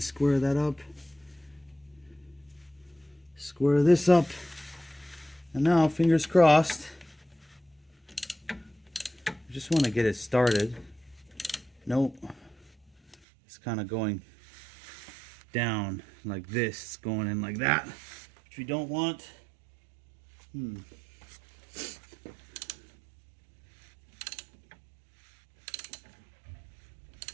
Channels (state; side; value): drops out; left; at 13.2 s